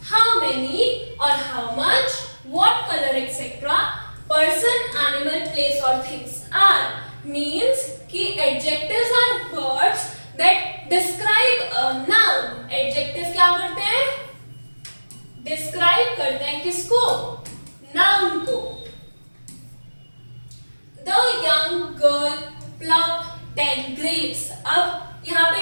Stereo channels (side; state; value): both; inverted; correlation -1.00